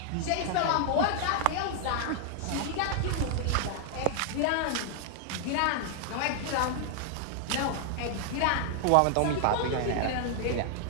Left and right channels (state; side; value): different; both; correlation 0.00